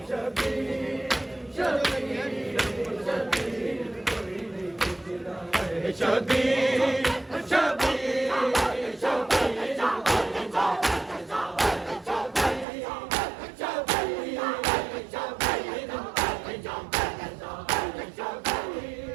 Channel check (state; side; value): drops out; left; at 12.7 s